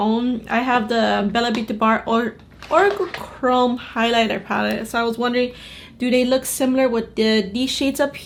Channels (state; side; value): identical; both; correlation 1.00